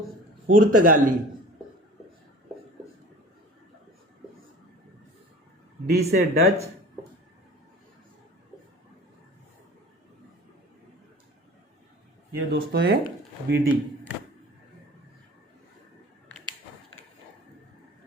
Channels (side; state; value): both; normal; correlation 0.41